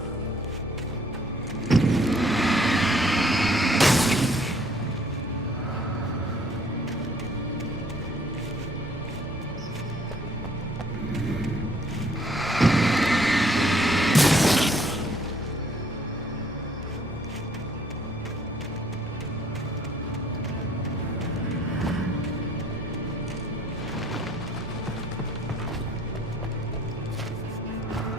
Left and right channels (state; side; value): normal; both; correlation 0.62